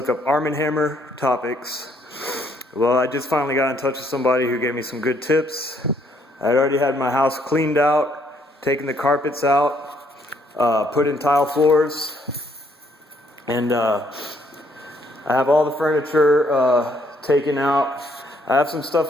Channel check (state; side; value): normal; both; correlation 0.68